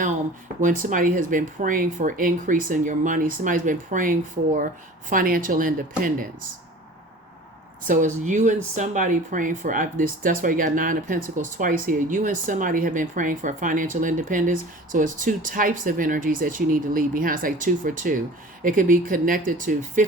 When somebody has been praying for increase in your money, somebody's been praying for financial independence. So it's you and somebody praying for this. That's why you got 9 of Pentacles twice here. You and somebody have been praying for financial independence. So it's 2 types of energies that you need to leave behind. It's like 2 for 2. It could be connected to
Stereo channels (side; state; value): both; normal; correlation 0.42